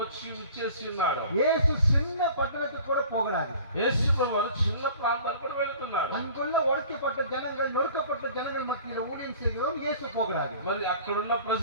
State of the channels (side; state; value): both; inverted; correlation -0.46